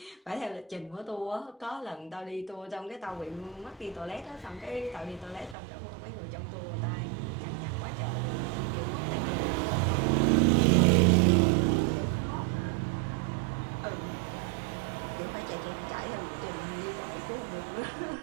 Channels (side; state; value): left; drops out; at 5.6 s